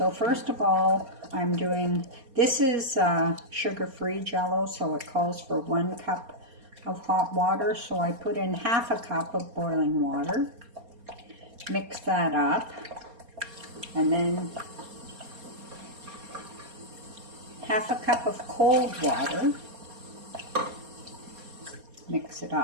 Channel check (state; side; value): late; left; 4.3 ms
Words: first of all, I'm doing, this is sugar-free Jello, so it calls for 1 cup of hot water. So I put in half a cup of boiling water, mix that up, and then half a cup of cold water, mix it